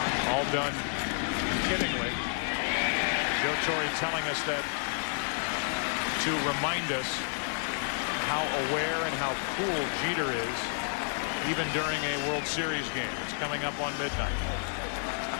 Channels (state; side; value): silent; right; 58 dB below the other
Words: All done kiddingly. Joe Torre telling us that to remind us how aware and how cool Jeter is even during a World Series game. It's coming up on midnight.